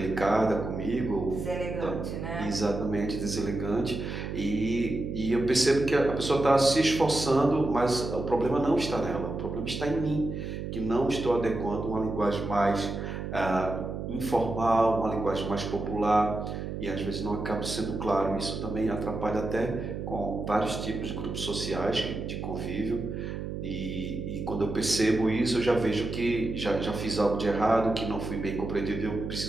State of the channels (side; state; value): right; noise; hum, 6 dB below the sound